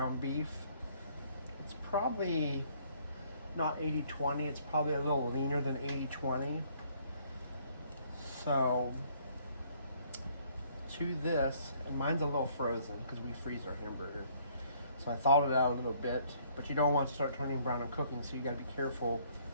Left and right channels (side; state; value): both; inverted; correlation -0.63